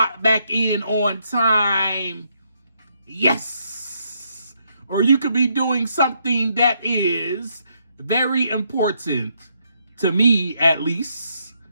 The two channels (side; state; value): both; inverted; correlation -0.76